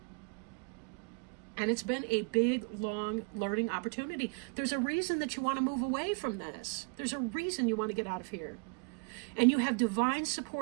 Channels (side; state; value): left; quieter; 37.2 dB